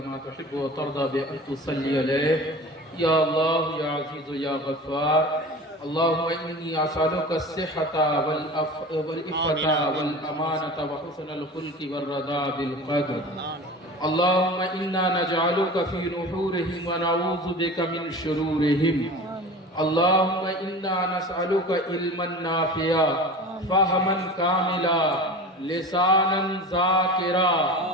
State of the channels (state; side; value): normal; both; correlation 0.35